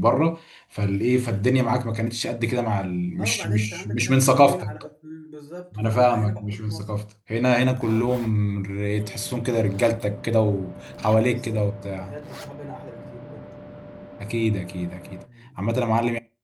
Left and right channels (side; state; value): both; identical; correlation 1.00